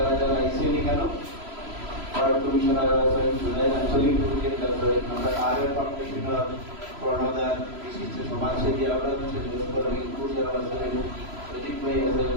যারা আইসেন এখানে, ওয়ার্ড কমিশনার আছেন, জুলাই আঞ্চলিক প্রেসিডেন্ট আছেন, আমরা আর ফাউন্ডেশনের কর্ণধার বিশিষ্ট সমাজসেবী আমরা লস্কর রিঙ্কু যারা আছেন, সজিব ভাই আছেন,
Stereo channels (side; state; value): left; late; 3.0 ms